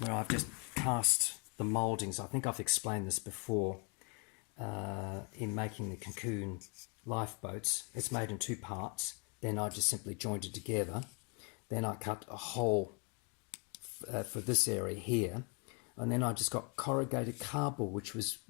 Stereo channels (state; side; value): quieter; right; 35.0 dB